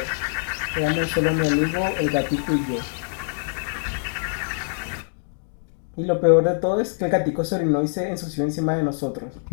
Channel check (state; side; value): silent; right; digital silence